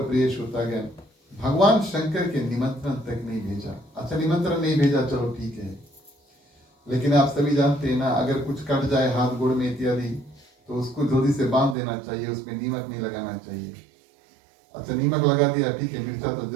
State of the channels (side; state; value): left; drops out; at 11.8 s